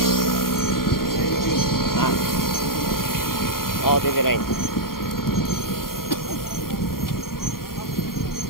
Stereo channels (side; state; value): right; late; 0.92 ms